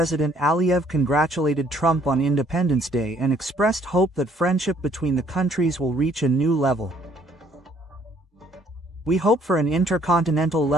Aliyev congratulated Trump on Independence Day and expressed hope that friendship between the countries will reach a new level. We hope for an intercontinental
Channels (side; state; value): both; normal; correlation 0.63